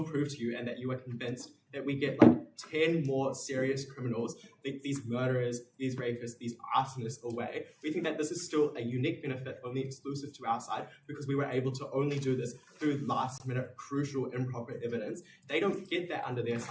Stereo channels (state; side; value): identical; both; correlation 1.00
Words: prove to you and that you are convinced that we get like 10 more serious criminals, these murderers, these rapists, these arsonists away. We think that this is still a unique benefit, only exclusive to our side, because we were able to only do this through last minute crucial improper evidence. They don't get that under their